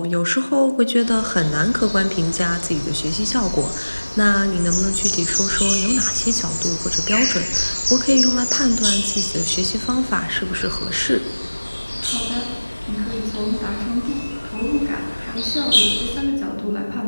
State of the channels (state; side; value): inverted; both; correlation -1.00